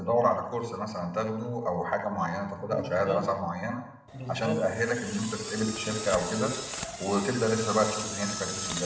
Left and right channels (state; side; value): identical; both; correlation 1.00